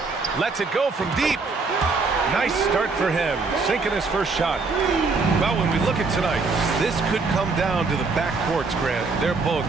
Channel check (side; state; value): left; quieter; 4.2 dB